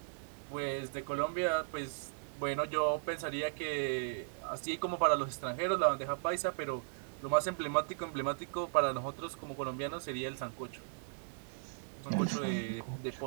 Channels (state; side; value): silent; left; digital silence